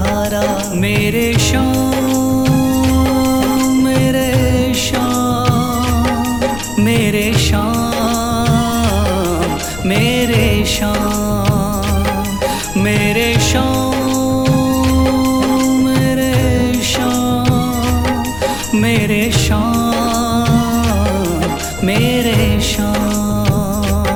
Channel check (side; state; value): left; noise; rumble, 14 dB below the sound